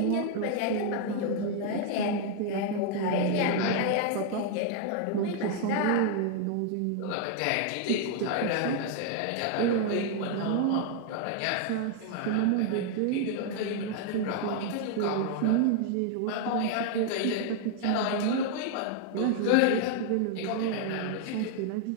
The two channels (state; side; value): different; both; correlation 0.00